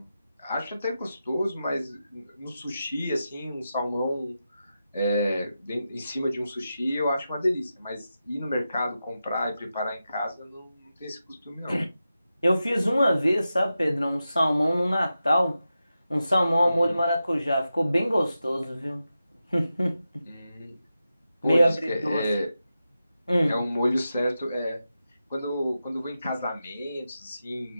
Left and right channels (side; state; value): both; inverted; correlation -0.91